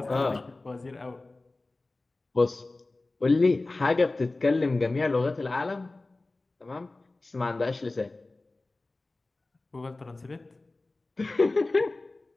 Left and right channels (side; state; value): right; quieter; 3.1 dB